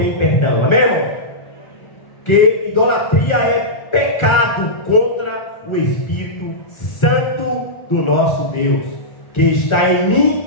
perdão. Amém, irmão? Que idolatria é pecado contra o Espírito Santo do nosso Deus, que está em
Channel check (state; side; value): late; right; 1.4 ms